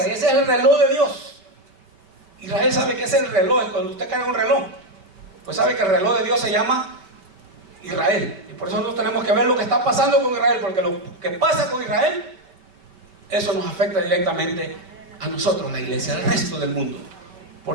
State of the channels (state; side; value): late; left; 5.2 ms